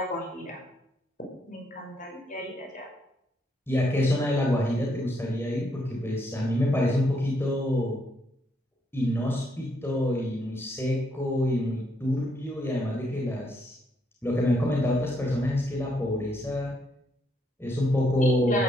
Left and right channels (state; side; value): normal; both; correlation 0.75